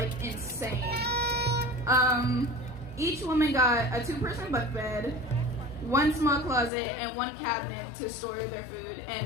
insane. Each woman got a 2-person bunk bed, 1 small closet, and 1 cabinet to store their food.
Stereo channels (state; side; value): drops out; right; at 6.7 s